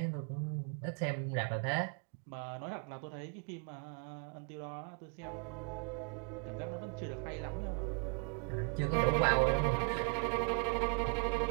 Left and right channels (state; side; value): quieter; left; 39.5 dB